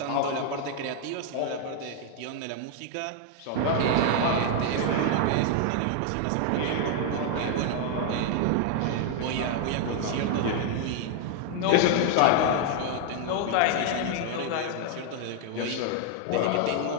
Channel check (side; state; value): both; different; correlation 0.00